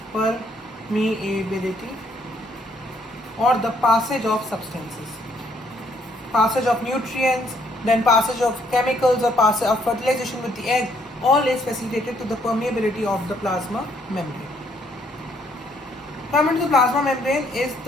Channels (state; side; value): normal; both; correlation 0.68